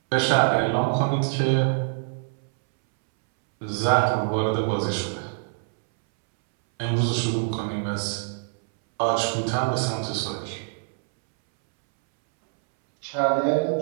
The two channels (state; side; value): silent; left; 62 dB below the other